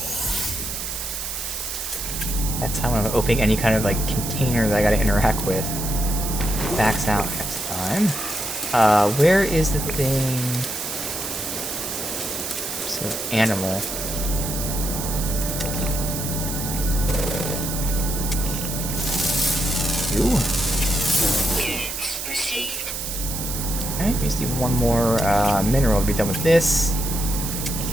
That's how I'm opening any kind of like container that I gotta interact with. Backs out next time. Where is the thing? So, animal. You. Units received. Okay, we just need one more mineral to be done with this.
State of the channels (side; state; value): right; noise; hiss, 5 dB below the sound